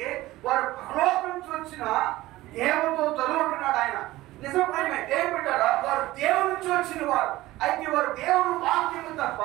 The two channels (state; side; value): quieter; left; 17.4 dB